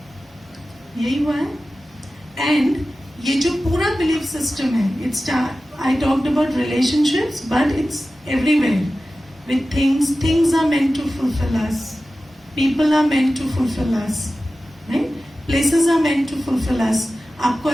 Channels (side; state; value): both; normal; correlation 0.95